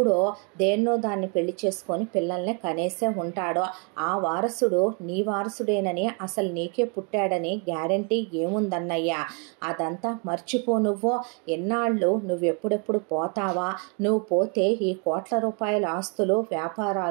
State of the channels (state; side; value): quieter; left; 36.3 dB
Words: దేన్నో దాన్ని పెళ్లి చేసుకొని పిల్లల్ని కనేసే ఉంటాడు. ఆ వారసుడు నీ వారసుడేనని, అసలు నీకే పుట్టాడని గ్యారంటీ ఏముందన్నయ్యా? అదంతా మర్చిపో నువ్వు. ఎన్నాళ్ళు నువ్వెప్పుడెప్పుడు పోతావా? నువ్వు పోతే ఈ కోట్ల రూపాయల ఆస్తులు,